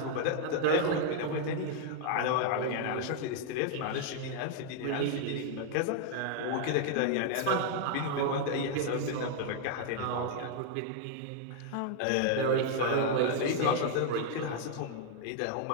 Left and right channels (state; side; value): different; both; correlation 0.00